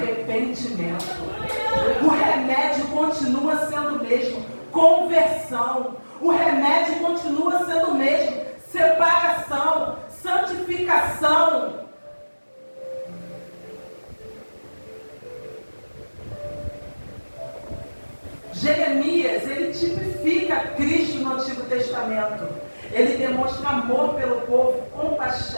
O remédio continua sendo o mesmo: conversão. O remédio continua sendo o mesmo: separação, santificação. Jeremias, ele tipifica Cristo no Antigo Testamento. Ele demonstra amor pelo povo,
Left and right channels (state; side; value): inverted; both; correlation -1.00